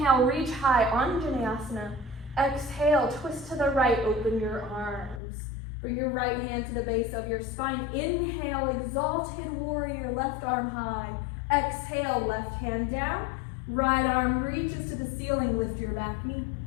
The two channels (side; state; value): right; drops out; at 5.2 s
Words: reach high, Anjaneyasana. Exhale, twist to the right, open your arms. Bring your right hand to the base of your spine. Inhale, exalted warrior, left arm high. Exhale, left hand down. Right arm reaches to the ceiling, lift your back knee.